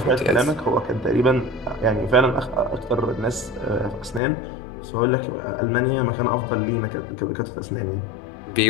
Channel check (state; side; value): drops out; right; at 4.2 s